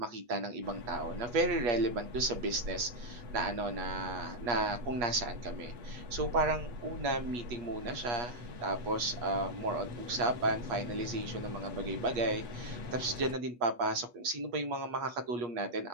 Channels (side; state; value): left; late; 8.3 ms